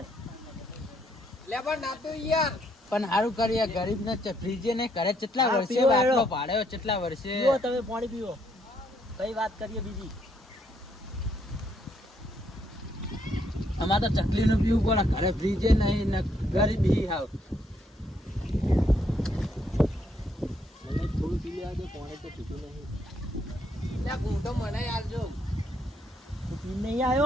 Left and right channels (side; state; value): both; normal; correlation 0.72